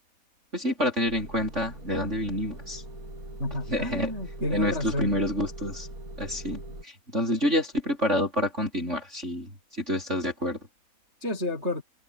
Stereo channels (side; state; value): left; late; 3.5 ms